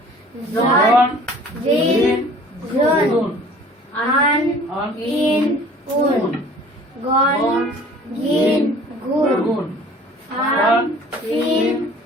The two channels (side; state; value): both; normal; correlation 0.49